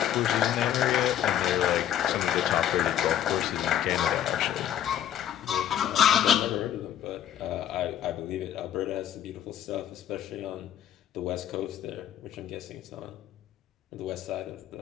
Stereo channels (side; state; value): right; quieter; 10.6 dB